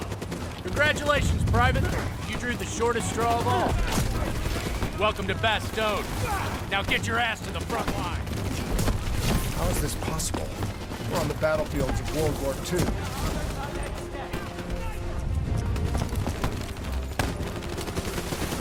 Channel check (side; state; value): both; identical; correlation 1.00